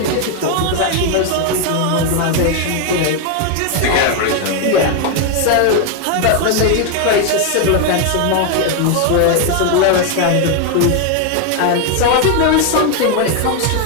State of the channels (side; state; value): both; different; correlation 0.01